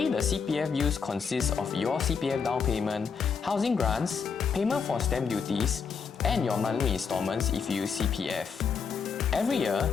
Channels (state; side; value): quieter; right; 6.0 dB